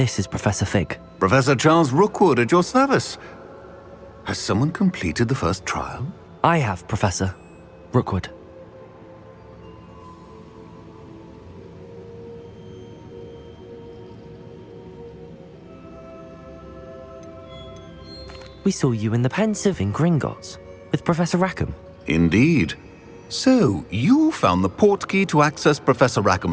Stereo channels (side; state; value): both; identical; correlation 1.00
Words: is Professor Fig. Professor Charles Rookwood at your service. Has someone completed the first trial? I have, Professor Rookwood. We saw you in the Pensive in Gringotts with Professor Rackham. Indeed. So, you found the portkey to access Professor